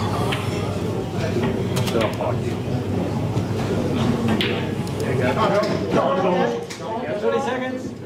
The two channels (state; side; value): identical; both; correlation 1.00